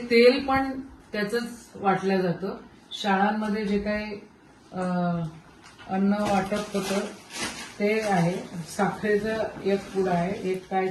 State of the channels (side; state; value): both; identical; correlation 1.00